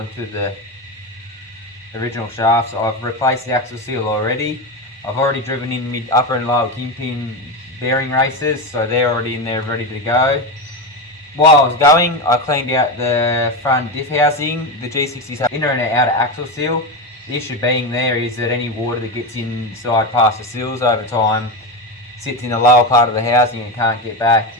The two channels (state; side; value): normal; both; correlation 0.16